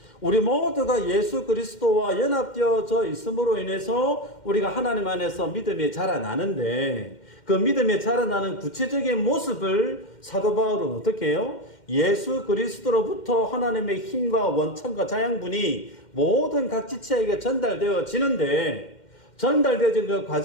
우리 모두가 예수 그리스도와 연합되어져 있음으로 인해서 우리가 하나님 안에서 믿음이 자라나는데 그 믿음이 자라나는 구체적인 모습을 사도 바울은 어떻게 해요? 예수 그리스도로부터 하나님의 힘과 원천과 자양분이 모든 각 지체에게 전달되어지는데 전달되어진 그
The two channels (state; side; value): late; right; 2.1 ms